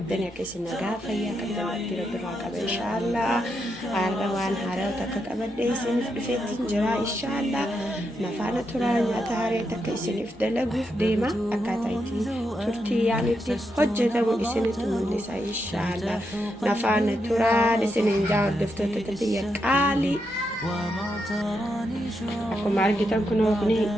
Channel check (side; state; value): both; normal; correlation 0.83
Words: akka isin nagaa fayyaa qabdan itti rabbiraa qaba inshaallah. Har'a waan haaraa takka qabadhee isiniif dhufeetiin jira inshaallah. Nafaana turaa nyaata haaraa takka isiniif dalaguuf deema. Akkaataa itti turtii yaanitti hojjetamu isinitti mul'isa inshaallah. Nafaana turaa isiniin jaa hordoftoota biyya qaalii. Akkuma argitan kunoo kuni